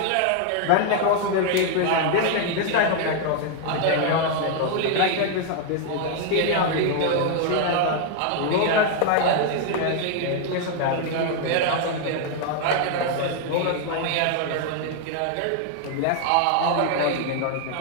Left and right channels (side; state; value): both; different; correlation 0.00